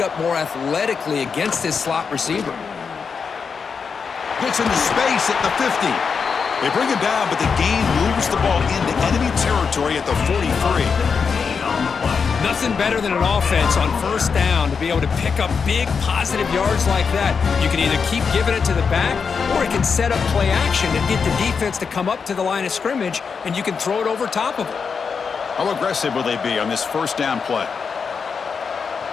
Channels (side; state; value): right; quieter; 5.8 dB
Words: up more athletically against this slot receiver. Gets into space at the 50. They bring him down, but the gain moves the ball into enemy territory at the 43. Nothing better than an offense on first down to be able to pick up big positive yards like that. You can either keep giving it to the back, or it can set up play action and get the defense to come up to the line of scrimmage, and you can throw it over top of it. How aggressive will they be on this first down play?